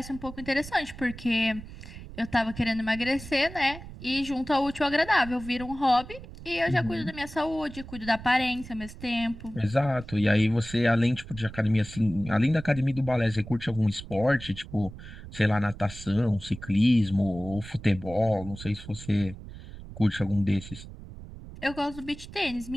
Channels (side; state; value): right; noise; rumble, 14 dB below the sound